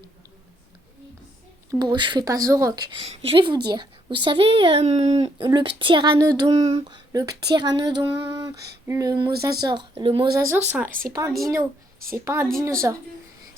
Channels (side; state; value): both; normal; correlation 0.72